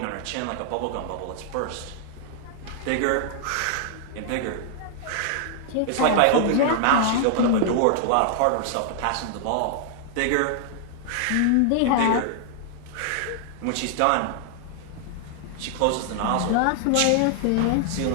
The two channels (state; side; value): different; both; correlation -0.01